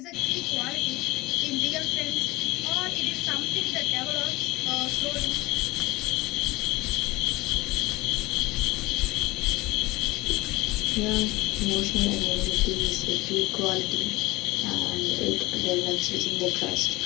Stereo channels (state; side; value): quieter; right; 20.9 dB